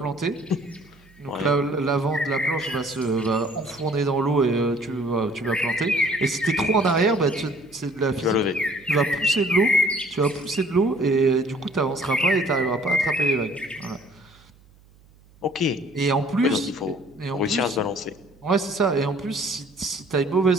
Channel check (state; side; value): noise; right; hum, 28 dB below the sound